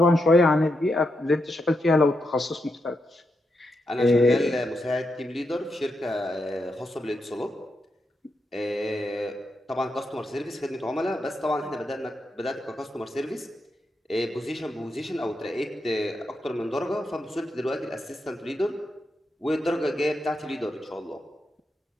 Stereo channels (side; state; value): both; normal; correlation 0.84